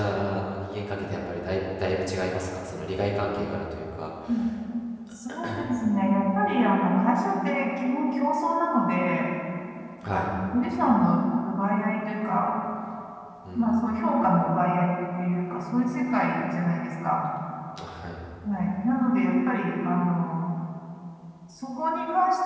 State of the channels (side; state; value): both; identical; correlation 1.00